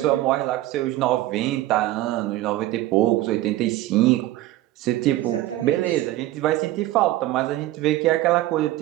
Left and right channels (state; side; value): quieter; left; 15.8 dB